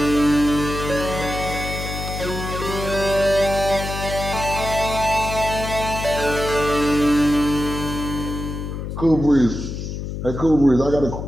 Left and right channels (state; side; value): noise; left; hum, 6 dB below the sound